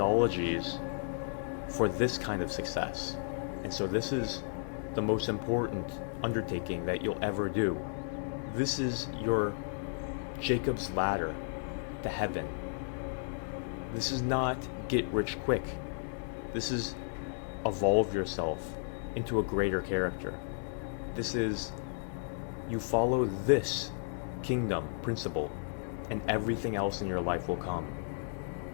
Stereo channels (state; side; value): silent; right; digital silence